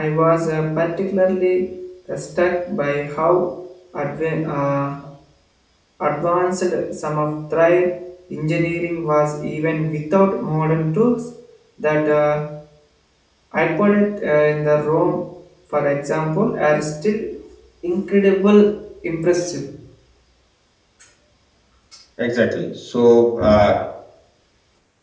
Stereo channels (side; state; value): both; identical; correlation 1.00